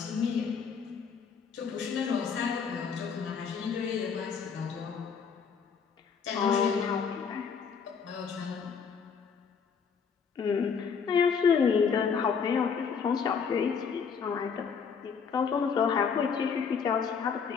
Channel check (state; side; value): quieter; right; 6.2 dB